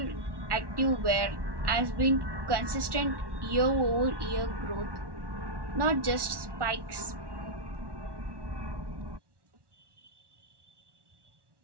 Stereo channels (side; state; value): left; late; 1.1 ms